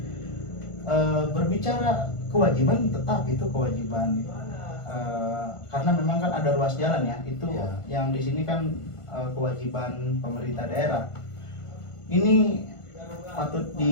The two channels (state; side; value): late; right; 1.5 ms